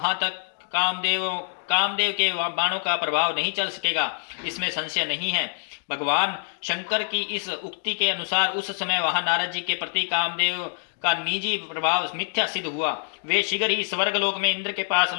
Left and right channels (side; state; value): right; silent; digital silence